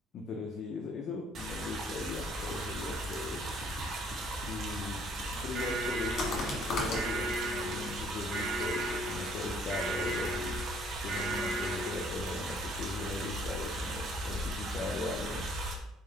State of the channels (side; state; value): both; normal; correlation 0.61